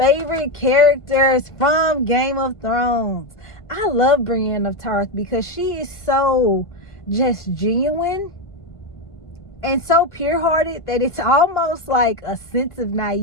characters from Game of Thrones. I love Brienne of Tarth because she is so just genuine and so pure-hearted that it's almost like a sense of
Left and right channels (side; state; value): right; late; 1.5 ms